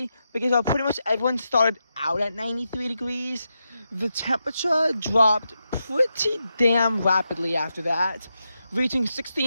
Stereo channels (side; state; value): both; inverted; correlation -0.87